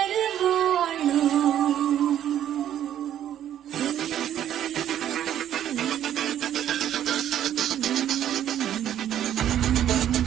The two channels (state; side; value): quieter; left; 10.9 dB